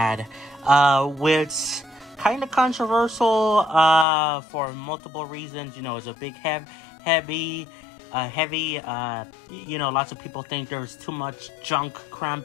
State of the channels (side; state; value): right; drops out; at 4.0 s